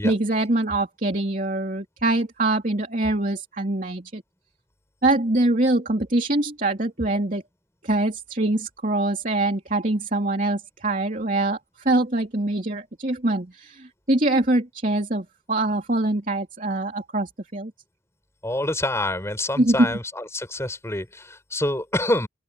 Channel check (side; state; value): both; normal; correlation 0.50